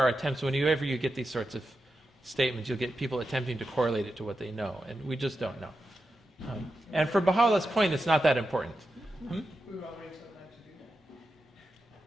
attempts, whenever you get these sorts of statements, you'll get people attempting to correlate it to what they know, and we just don't know. And for Baha'u'llah's point, it's not that important. We were already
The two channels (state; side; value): normal; both; correlation 0.89